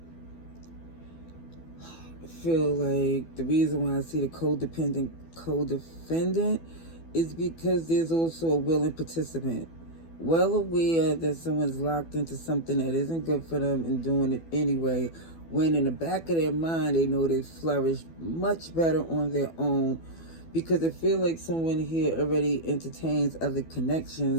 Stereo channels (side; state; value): right; late; 12 ms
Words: I feel like the reason why I see the codependent is because there's also a willing participant, well aware that someone's locked into something that isn't good for them and doing it anyway, when in the back of their mind they know they flourish much better on their own, because I feel like someone here already entertains other